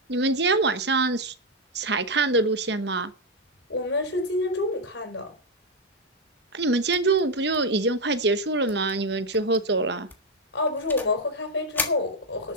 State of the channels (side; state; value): both; normal; correlation 0.04